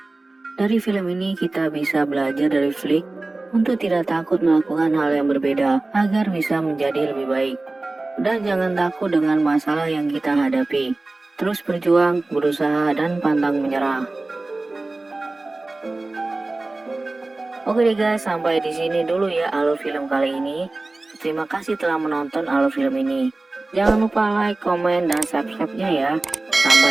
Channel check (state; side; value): quieter; left; 3.1 dB